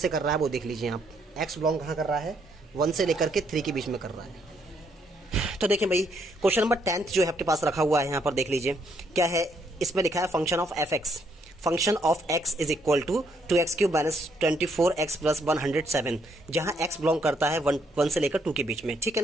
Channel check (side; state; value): both; normal; correlation 0.72